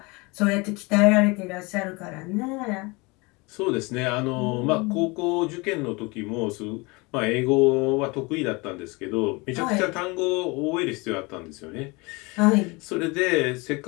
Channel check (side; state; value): right; quieter; 26.2 dB